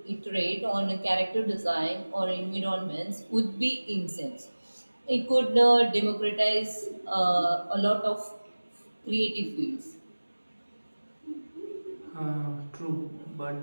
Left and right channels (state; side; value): inverted; both; correlation -1.00